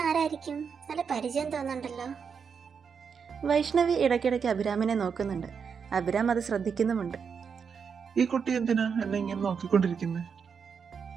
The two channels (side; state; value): left; quieter; 6.3 dB